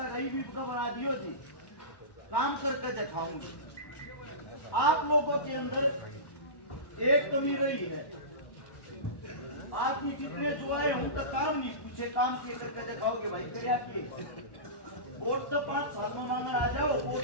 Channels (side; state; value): right; late; 1.2 ms